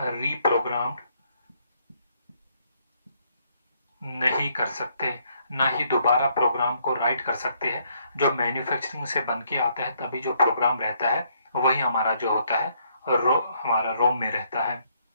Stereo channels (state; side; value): inverted; both; correlation -0.70